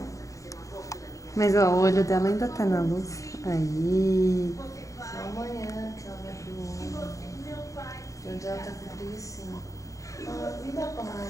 Mas ó, o olho dela ainda tá na luz. Aí. Só amanhã que ela vai abrir o olho. De onde ela tá com preguiça. Ah, vida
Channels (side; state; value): right; late; 0.16 ms